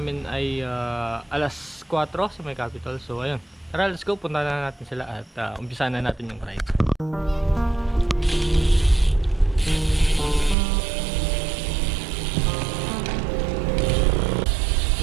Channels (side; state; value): left; drops out; at 10.6 s